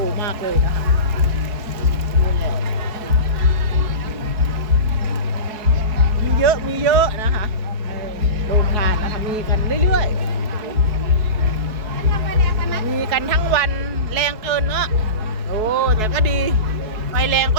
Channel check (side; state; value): left; late; 4.7 ms